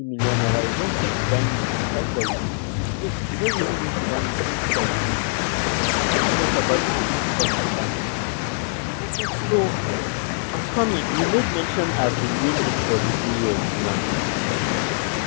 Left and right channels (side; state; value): right; silent; digital silence